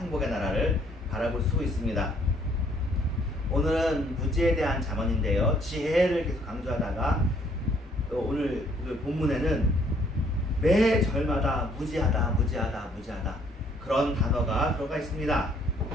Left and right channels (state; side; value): normal; both; correlation 0.64